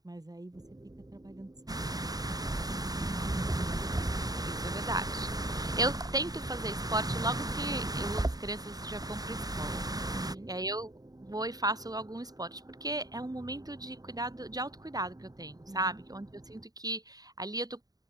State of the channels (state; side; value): late; left; 0.18 ms